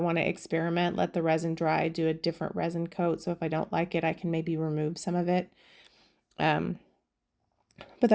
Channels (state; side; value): identical; both; correlation 1.00